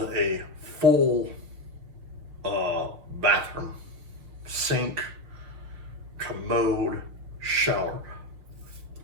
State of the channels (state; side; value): late; left; 6.3 ms